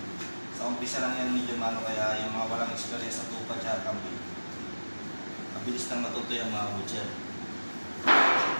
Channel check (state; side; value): inverted; both; correlation -1.00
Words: Sa umpisa lang yan medyo mano, kaya yung mga walang experience sa tupad siya kambing, mabilis lang matuto yung mga kabutcher.